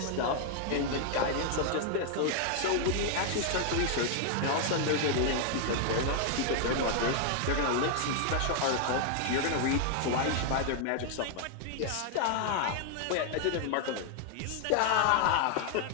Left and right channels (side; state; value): both; different; correlation 0.00